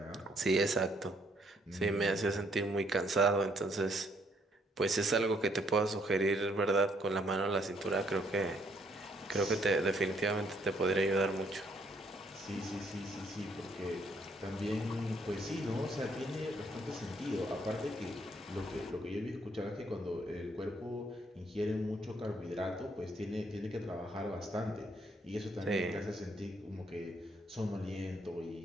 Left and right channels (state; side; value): normal; both; correlation 0.69